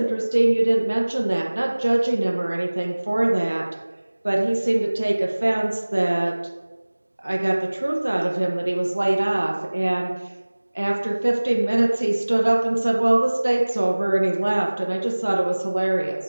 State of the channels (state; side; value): inverted; both; correlation -1.00